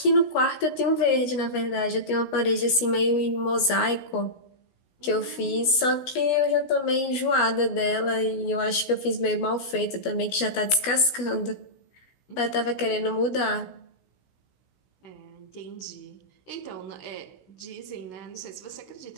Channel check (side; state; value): right; late; 16 ms